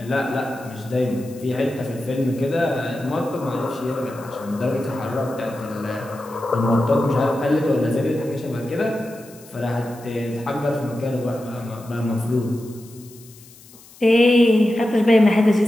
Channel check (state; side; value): noise; left; hiss, 23 dB below the sound